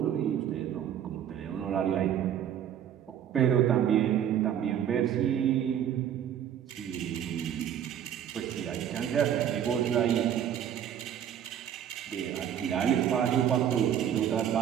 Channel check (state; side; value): quieter; left; 9.8 dB